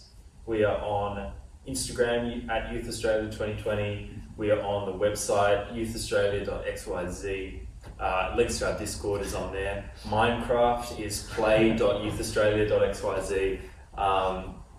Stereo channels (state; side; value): identical; both; correlation 1.00